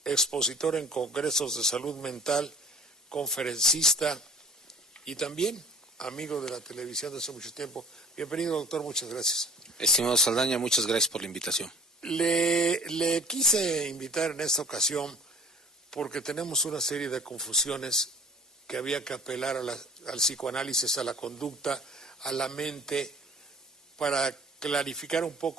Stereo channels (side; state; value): both; normal; correlation 0.47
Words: expositor en congresos de salud mental, conferencista y también amigo de la televisión de hace mucho tiempo. Bienvenido, doctor, muchas gracias. Estimado Saldaña, muchas gracias por la invitación. Le quise invitar en esta ocasión porque tenemos una serie de confusiones que había que apelar al psicoanálisis, a la conducta, a la mente, para clarificar un